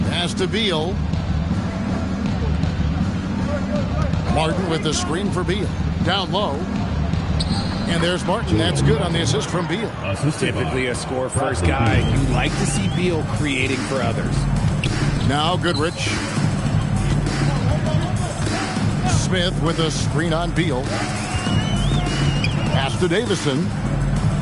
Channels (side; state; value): both; identical; correlation 1.00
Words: Pass to Beal. Martin with the screen for Beal. Down low. And there's Martin. That's good on the assist from Beal. Typically a score-first guy. You like to see Beal creating for others. Now Goodrich. Smith with a screen on Beal. Pass to Davison.